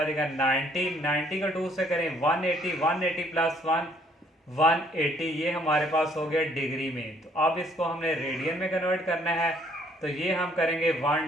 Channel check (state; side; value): normal; both; correlation 0.64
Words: जाएगा 90 का 2 से करें 180 प्लस 1 180 ये हमारे पास हो गया डिग्री में। तो अब इसको हमने रेडियन में कन्वर्ट करना है तो ये हम करेंगे